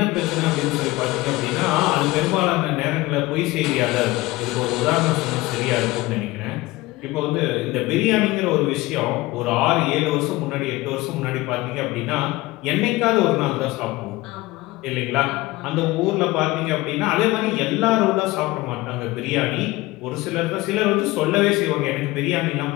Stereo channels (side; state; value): right; quieter; 19.7 dB